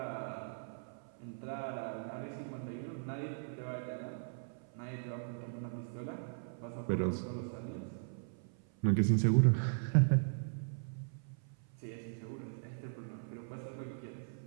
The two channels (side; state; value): left; silent; 52 dB below the other